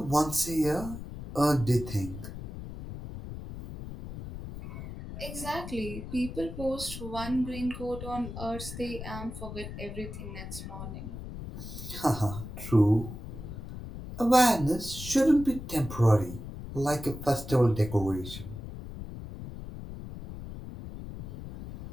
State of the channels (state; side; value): noise; left; rumble, 10 dB below the sound